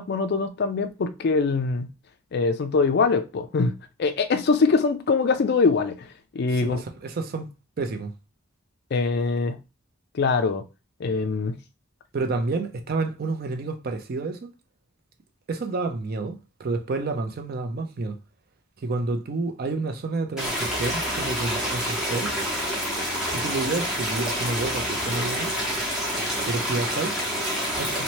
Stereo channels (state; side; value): normal; both; correlation 0.20